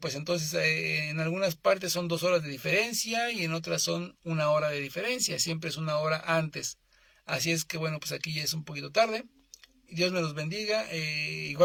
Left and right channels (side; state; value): both; identical; correlation 1.00